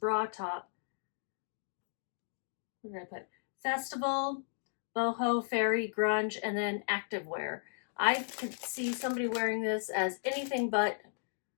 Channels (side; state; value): right; silent; digital silence